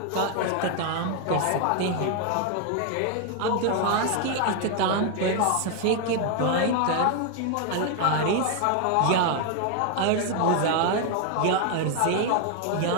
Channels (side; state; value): both; different; correlation 0.00